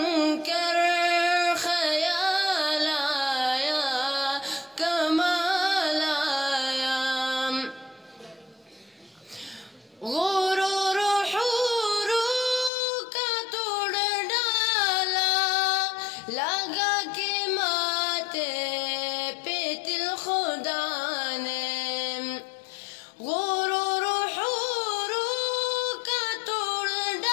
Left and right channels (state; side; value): drops out; right; at 12.7 s